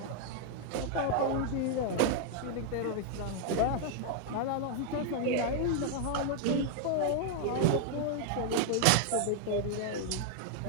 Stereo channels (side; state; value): both; different; correlation 0.00